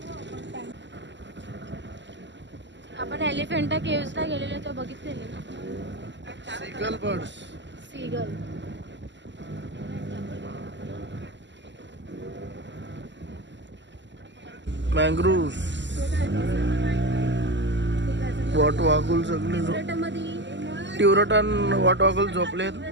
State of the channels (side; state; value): left; late; 0.53 ms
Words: आपण एलिफंटा केव्सला गेलेलो तेव्हा बघितलेले ना. सिगल बर्ड्स. सीगल. मँग्रोव्स, वॉट वागुल सगळे टिवरटन वॉट वागुल झोपलेत.